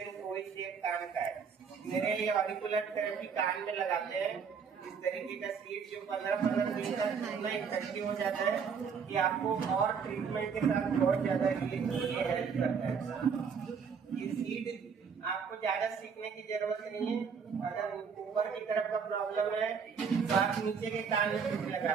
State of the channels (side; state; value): left; quieter; 6.2 dB